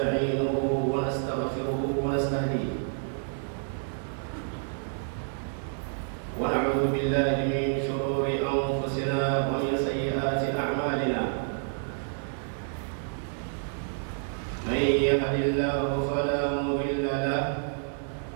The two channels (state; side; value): silent; left; 59 dB below the other